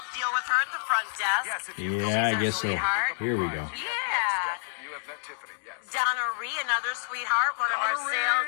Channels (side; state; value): right; silent; digital silence